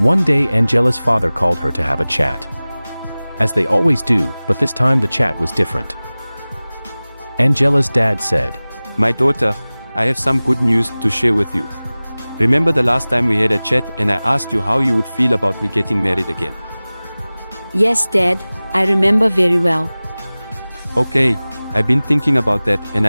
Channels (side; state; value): both; inverted; correlation -0.99